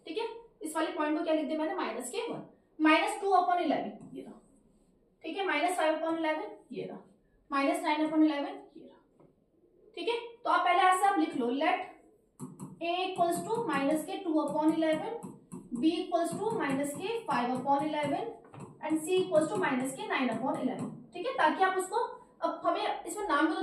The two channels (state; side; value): identical; both; correlation 1.00